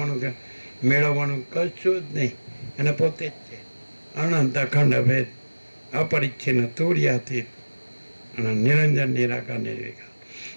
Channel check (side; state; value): both; inverted; correlation -1.00